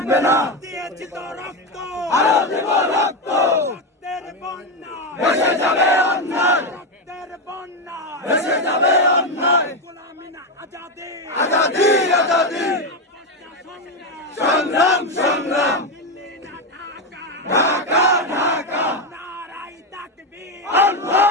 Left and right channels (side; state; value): both; normal; correlation 0.10